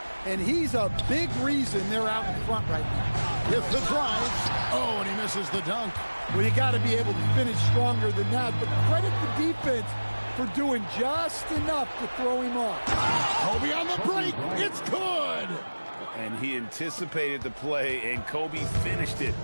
And he's a big reason they're out in front right now. with the drive. Oh, and he misses the dunk. Well, you got to be able to finish stronger than that, but credit the defense for doing just enough to throw him off. Kobe on the break. It's good. And he anticipated the play, and Kobe finished it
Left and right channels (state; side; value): inverted; both; correlation -1.00